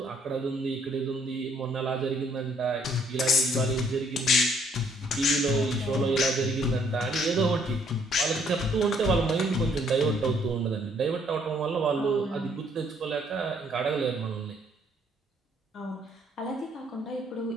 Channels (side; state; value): both; normal; correlation 0.65